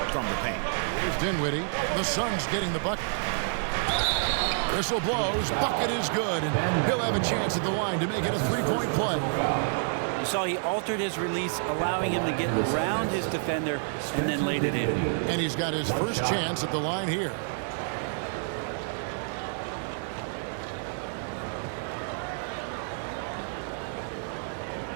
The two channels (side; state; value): left; silent; digital silence